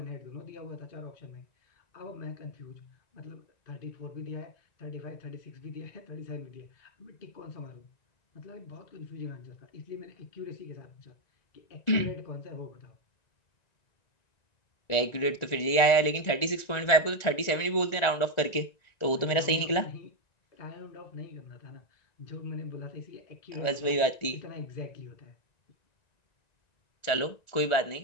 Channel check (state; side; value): late; right; 1.4 ms